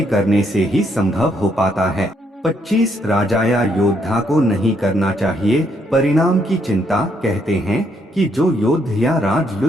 करने से ही संभव हो पाता है। 25 राजा या योद्धा को नहीं करना चाहिए परिणाम की चिंता। कहते हैं कि जो योद्धा या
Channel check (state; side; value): normal; both; correlation 0.73